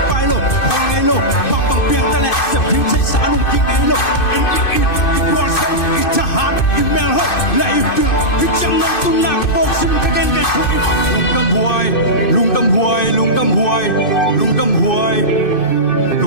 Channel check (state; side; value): late; right; 2.6 ms